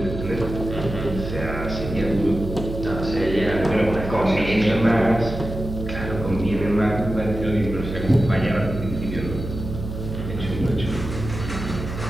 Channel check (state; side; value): noise; right; hum, 7 dB below the sound